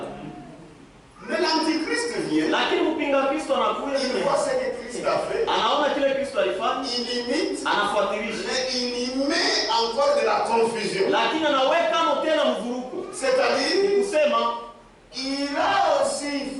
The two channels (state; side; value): identical; both; correlation 1.00